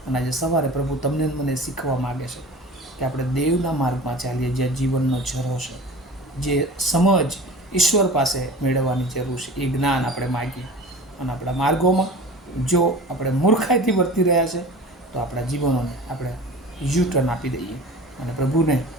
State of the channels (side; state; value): both; normal; correlation 0.38